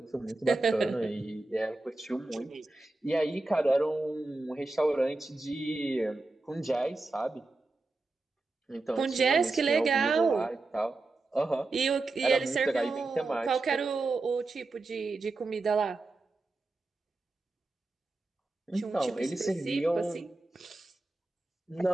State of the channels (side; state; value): left; quieter; 3.2 dB